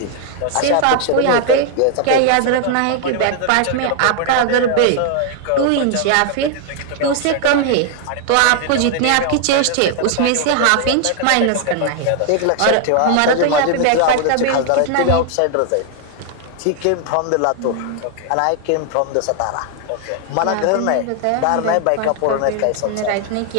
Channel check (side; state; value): both; different; correlation 0.00